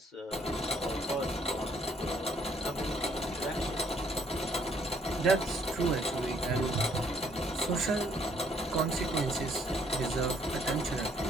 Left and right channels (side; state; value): both; normal; correlation 0.65